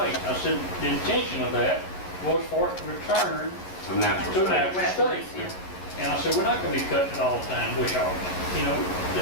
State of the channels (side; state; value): right; late; 11 ms